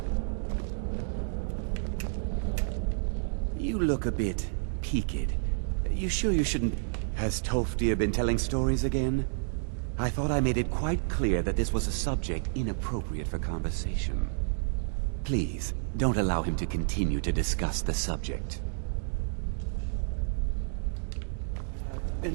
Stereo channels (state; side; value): silent; left; digital silence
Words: You look a bit peaked. You sure you shouldn't... Has Tolfdir been telling stories again? I thought I made it quite clear that this was a subject inappropriate for conversation. Please, don't allow him to continue to discuss the subject.